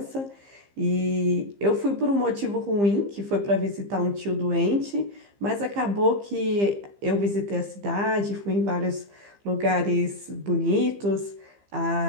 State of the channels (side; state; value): left; late; 15 ms